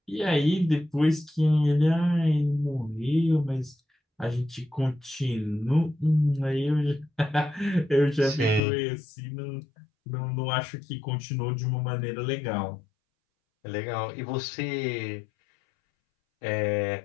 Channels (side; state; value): right; drops out; at 8.6 s